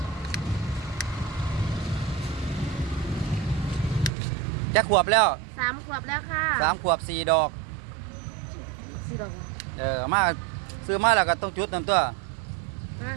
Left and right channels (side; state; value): left; drops out; at 4.1 s